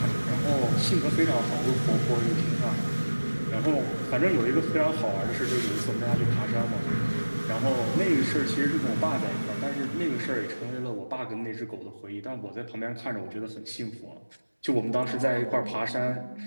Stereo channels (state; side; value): inverted; both; correlation -1.00